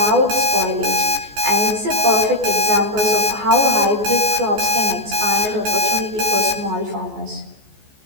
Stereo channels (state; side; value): late; left; 14 ms